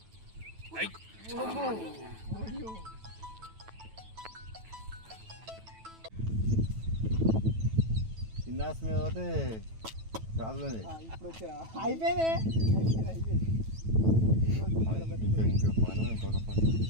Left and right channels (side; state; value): left; late; 9.1 ms